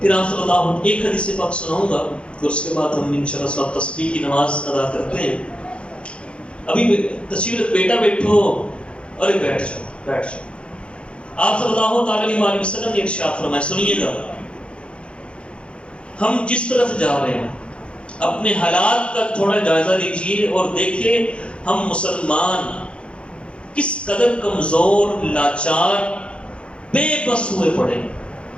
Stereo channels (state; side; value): late; right; 0.058 ms